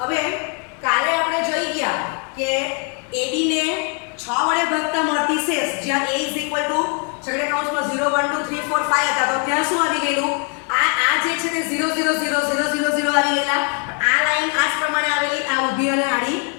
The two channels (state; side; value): quieter; right; 35.6 dB